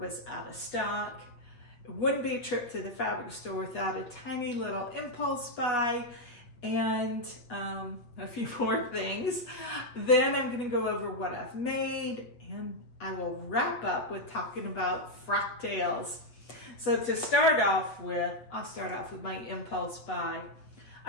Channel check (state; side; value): late; right; 8.0 ms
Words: out of stock. It wouldn't be a trip to the fabric store without a tiny little impulse buy and a few more things. Then I'm going to go over what I've made and I will wrap up with talking about Frocktails. So to start off with, I'll start off with my impulse buy.